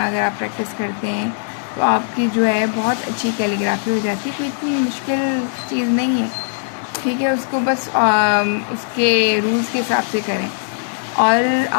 आप प्रैक्टिस करते हैं तो आपकी जो है बहुत अच्छी कैलीग्राफी हो जाती है। कोई इतनी मुश्किल चीज़ नहीं है, ठीक है। उसको बस उसके रूल्स के हिसाब से करें। और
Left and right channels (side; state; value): right; silent; digital silence